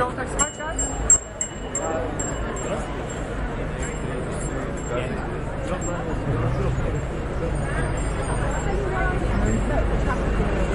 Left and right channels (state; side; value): identical; both; correlation 1.00